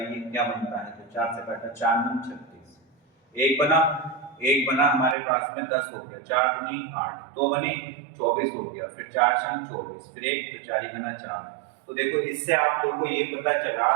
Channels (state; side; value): drops out; left; at 5.2 s